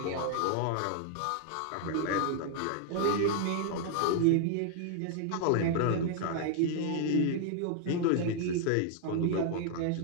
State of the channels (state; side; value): different; both; correlation 0.00